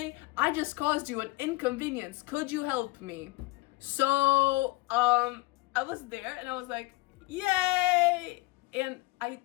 I just caused you an inconvenience. Could you help me? So, I was there and I was like, yay! And I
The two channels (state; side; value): quieter; right; 22.3 dB